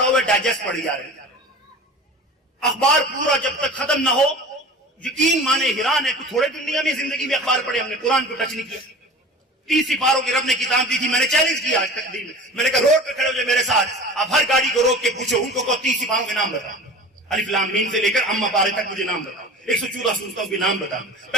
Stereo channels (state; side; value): normal; both; correlation 0.38